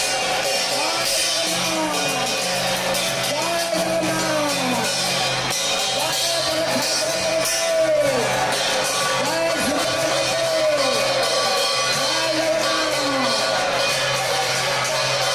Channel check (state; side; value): identical; both; correlation 1.00